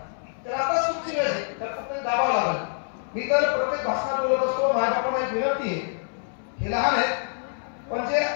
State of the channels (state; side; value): silent; right; 61 dB below the other